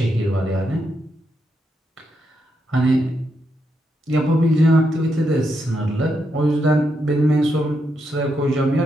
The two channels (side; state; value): both; normal; correlation 0.82